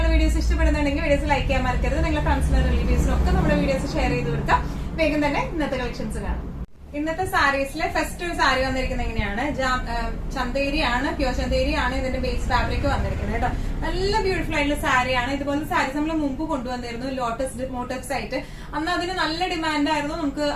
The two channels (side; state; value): both; identical; correlation 1.00